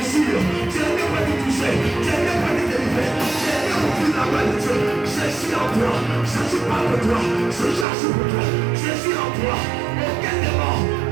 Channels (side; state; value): left; drops out; at 7.9 s